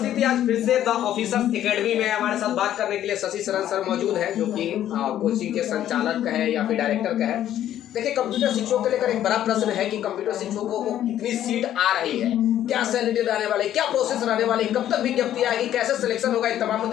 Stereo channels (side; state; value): right; quieter; 11.6 dB